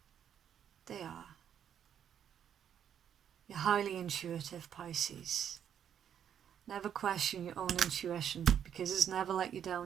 They are. You're highly intuitive, Pisces. Never question your own intuition, because it's never let you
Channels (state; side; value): quieter; left; 9.0 dB